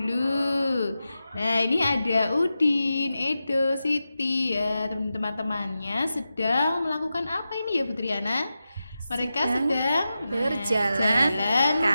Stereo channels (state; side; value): inverted; both; correlation -0.91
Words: Nah, ini ada Udin, Edo, Siti ya, teman-temannya sedang melakukan apa ini ya Bu Triana? Mereka sedang berjalan